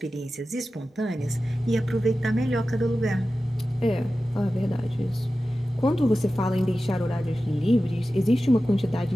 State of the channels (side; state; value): both; normal; correlation 0.94